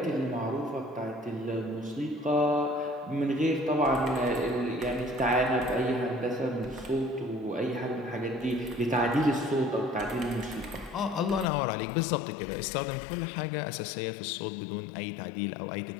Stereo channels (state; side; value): drops out; right; at 11.5 s